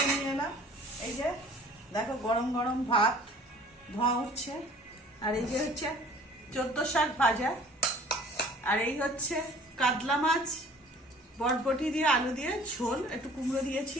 নিয়ে এলাম। এই যে দেখো গরম গরম ভাত ধোঁয়া উঠছে, আর এই যে হচ্ছে 14 শাক ভাজা, আর এই হচ্ছে কাতলা মাছ বটবটি দিয়ে আলু দিয়ে ঝোল, একটু কুমড়ো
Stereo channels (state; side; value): normal; both; correlation 0.50